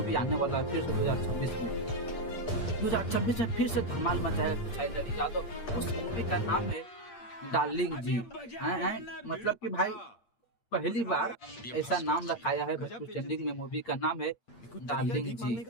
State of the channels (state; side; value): late; right; 8.6 ms